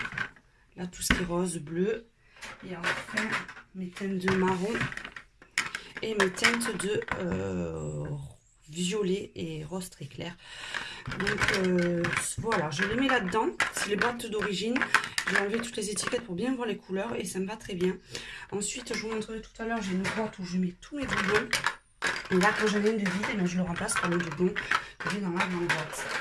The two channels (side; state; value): both; identical; correlation 1.00